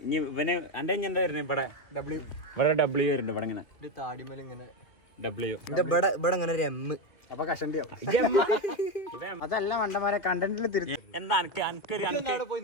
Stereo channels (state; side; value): late; right; 2.3 ms